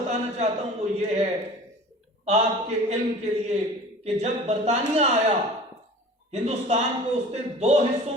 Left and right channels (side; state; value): both; normal; correlation 0.42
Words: चाहता हूं वो ये है आपके इल्म के लिए कि जब बरतानिया आया हिंदुस्तान को उसने दो हिस्सों